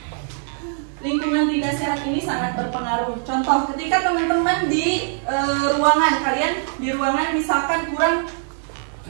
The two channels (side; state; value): left; silent; digital silence